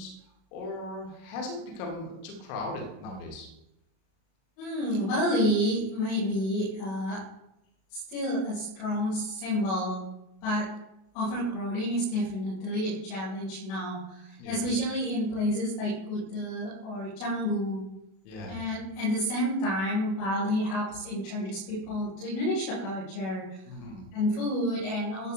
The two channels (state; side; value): late; right; 37 ms